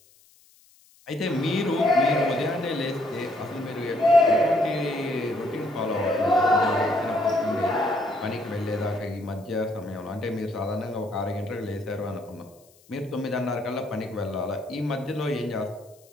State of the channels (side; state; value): left; noise; hiss, 29 dB below the sound